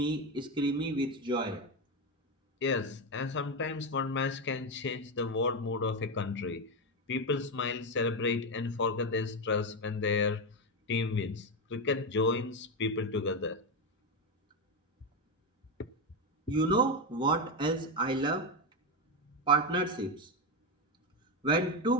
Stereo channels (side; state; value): both; normal; correlation 0.11